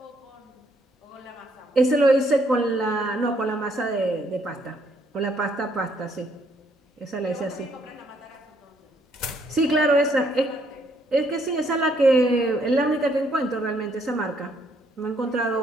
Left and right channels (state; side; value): normal; both; correlation 0.69